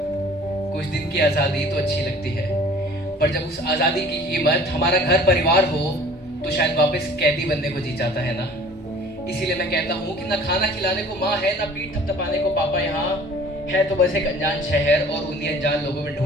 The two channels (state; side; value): normal; both; correlation 0.49